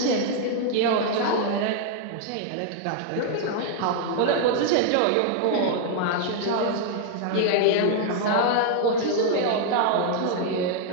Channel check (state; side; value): different; both; correlation 0.00